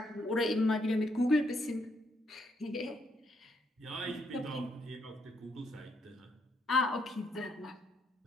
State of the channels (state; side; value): normal; both; correlation 0.74